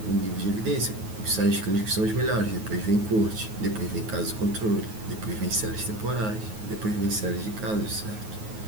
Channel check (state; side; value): late; left; 9.4 ms